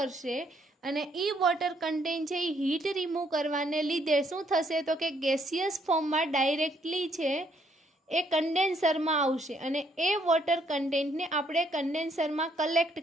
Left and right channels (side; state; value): both; normal; correlation 0.69